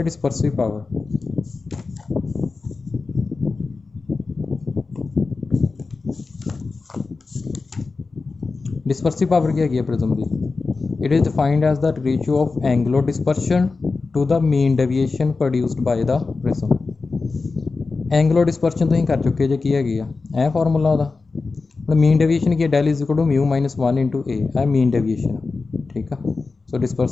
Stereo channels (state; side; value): quieter; right; 4.1 dB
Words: ਡਿਸਪਰਸਿਵ ਪਾਵਰ। ਡਿਸਪਰਸਿਵ ਪਾਵਰ ਕੀ ਹੈਗੀ ਹੈ ਪ੍ਰਿਜ਼ਮ ਦੀ? It is defined as the ratio of angular dispersion to the mean deviation produced by the prism। Angular dispersion तुसीं कर चुके जे की हैगी आ फार्मूला ਉਹਦਾ ਹੁਣ मीन डेविएशन की del is equal to mu minus 1 into A mean deviation ठीक है। सो